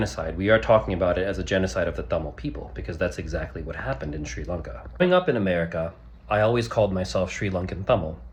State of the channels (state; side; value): identical; both; correlation 1.00